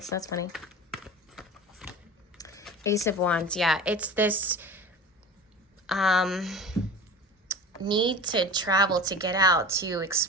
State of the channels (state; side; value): normal; both; correlation 0.36